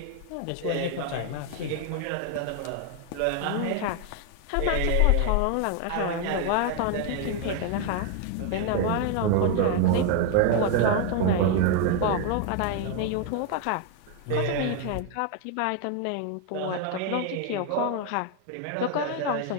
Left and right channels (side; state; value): both; different; correlation 0.01